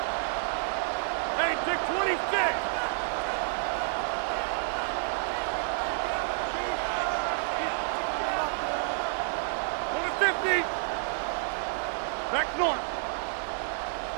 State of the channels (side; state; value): left; silent; digital silence